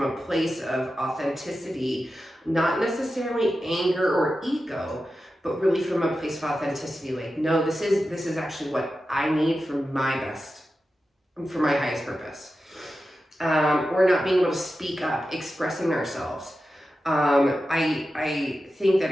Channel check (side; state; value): both; normal; correlation 0.92